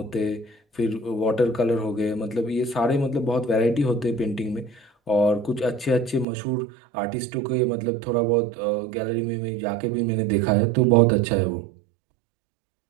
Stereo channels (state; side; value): drops out; left; at 6.2 s